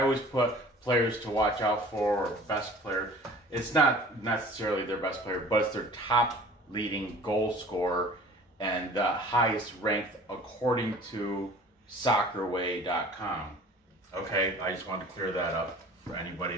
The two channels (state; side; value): normal; both; correlation 0.46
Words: always put players to watch out for, or best player. It's not necessarily their best player, but it's their top leading goal scorer and the highest ranked according to soccerway.com. Okay, I just wanted to clear that up for anybody